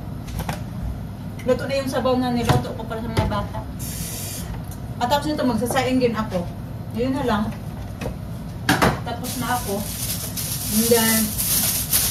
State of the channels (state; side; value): identical; both; correlation 1.00